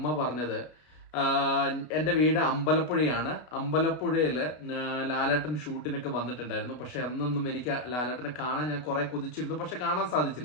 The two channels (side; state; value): right; late; 32 ms